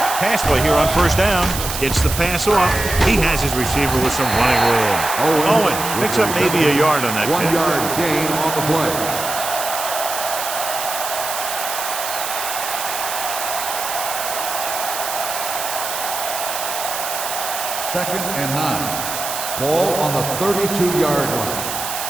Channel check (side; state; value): right; noise; hiss, 5 dB below the sound